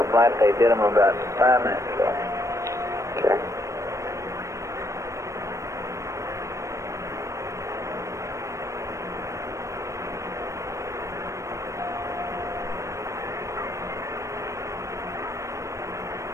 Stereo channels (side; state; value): left; late; 0.15 ms